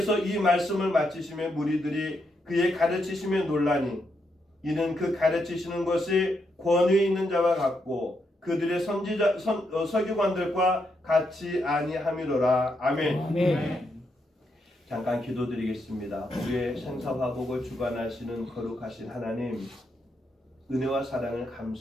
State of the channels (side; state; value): both; normal; correlation 0.80